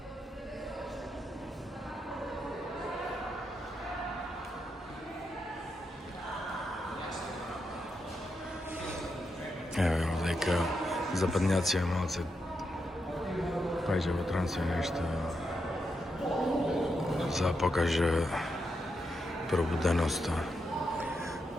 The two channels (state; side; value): normal; both; correlation 0.84